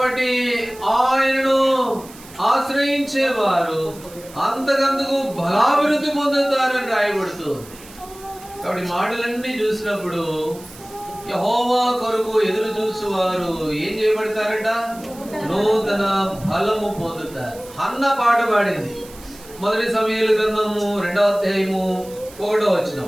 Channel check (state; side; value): noise; right; hiss, 20 dB below the sound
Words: ఆయనను ఆశ్రయించేవారు అంతకంతకు బలాభివృద్ధి పొందుతారని రాయబడుతుంది. కాబట్టి మాటలన్నీ చూసినప్పుడు యెహోవా కొరకు ఎదురు చూసేవారు ఏం చేయబడతారట? నూతన బలము పొందుతారు. హన్న పాట పాడింది. మొదటి సమూయేలు గ్రంథము 2వ అధ్యాయము 1వ